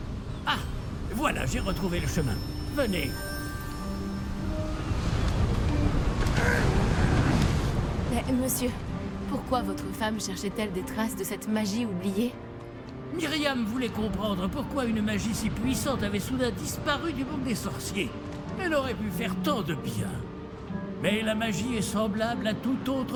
Ah, voilà, j'ai retrouvé le chemin. Venez. Mais, monsieur, pourquoi votre femme cherchait-elle des traces de cette magie oubliée? Myriam voulait comprendre pourquoi une magie si puissante avait soudain disparu du monde des sorciers. Elle aurait pu faire tant de bien. Mais la magie est semblable à tout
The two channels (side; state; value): both; identical; correlation 1.00